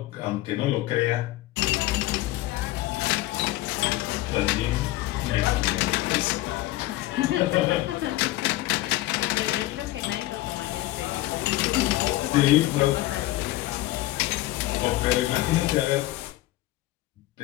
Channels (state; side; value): quieter; right; 17.1 dB